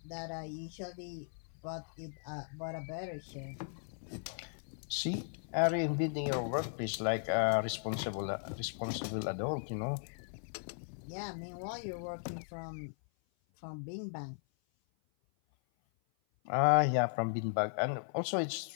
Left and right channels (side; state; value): right; silent; 53 dB below the other